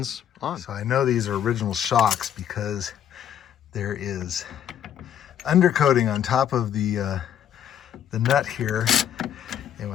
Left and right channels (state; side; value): quieter; right; 9.7 dB